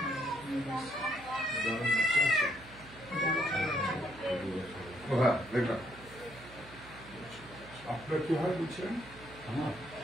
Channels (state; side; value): noise; right; hum, 19 dB below the sound